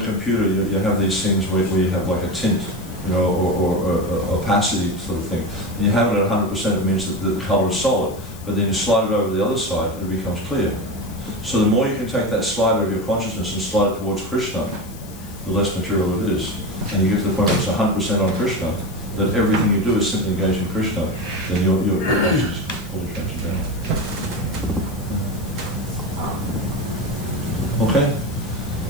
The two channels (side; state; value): left; noise; hiss, 20 dB below the sound